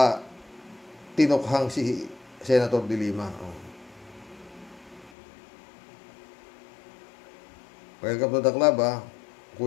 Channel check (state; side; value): drops out; right; at 5.1 s